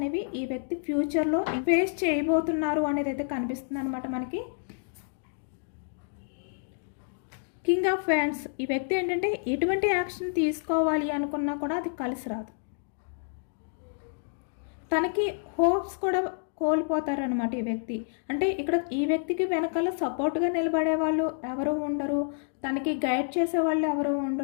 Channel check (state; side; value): silent; right; digital silence